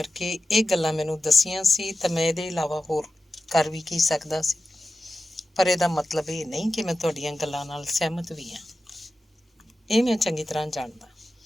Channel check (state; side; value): normal; both; correlation 0.93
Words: ਇਹ ਗੱਲਾਂ ਮੈਨੂੰ ਦੱਸੀਆਂ ਸੀ ਤਾਂ ਮੈਂ ਇਹਦੇ ਇਲਾਵਾ ਹੋਰ ਕਰ ਵੀ ਕੀ ਸਕਦਾ ਸੀ, ਪਰ ਇਹਦਾ ਮਤਲਬ ਇਹ ਨਹੀਂ ਕਿ ਮੈਂ ਤੁਹਾਡੀਆਂ ਗੱਲਾਂ ਨਾਲ ਸਹਿਮਤ ਵੀ ਹਾਂ। ਇਹ ਮੈਂ ਚੰਗੀ ਤਰ੍ਹਾਂ ਜਾਣਦਾ,